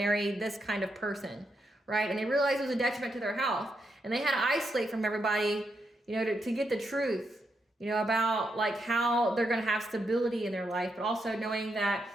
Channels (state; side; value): normal; both; correlation 0.82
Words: this kind of person, right? And they realized it was a detriment to their health. And they had to isolate from everybody, you know, to get the truth, you know, about like how they're gonna have stability in their life, but also knowing that